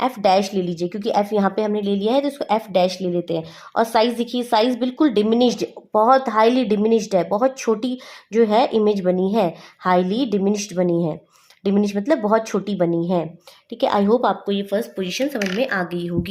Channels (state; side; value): identical; both; correlation 1.00